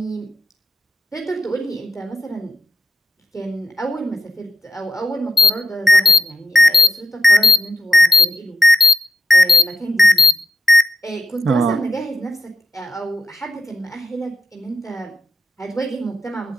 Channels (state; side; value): normal; both; correlation 0.84